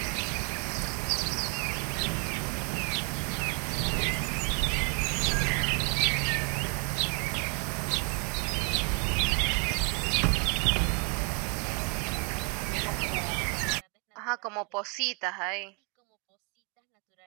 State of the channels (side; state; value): left; quieter; 35.9 dB